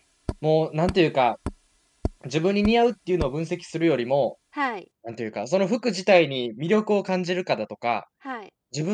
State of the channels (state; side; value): identical; both; correlation 1.00